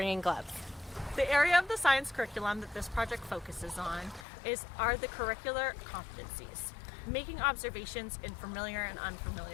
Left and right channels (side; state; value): right; drops out; at 4.2 s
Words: gloves. The area of the science curriculum that this project focuses on are the curricular competencies. Making observations in familiar and